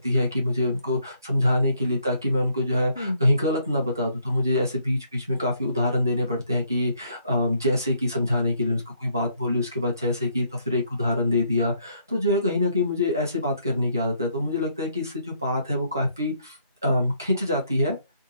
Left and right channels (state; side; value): inverted; both; correlation -0.69